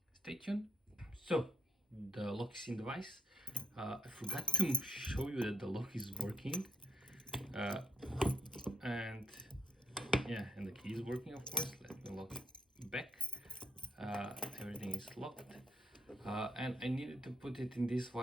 stay tuned. So the lock is in the vise. I forgot to show you that the lock is working. And yeah, and the key is working, of course. Let me lock it back. Everything is locked. And I needed to put it in this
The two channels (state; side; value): normal; both; correlation 0.79